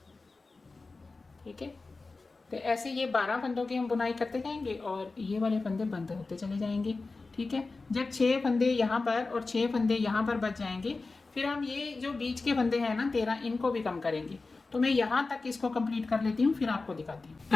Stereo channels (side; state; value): right; quieter; 3.7 dB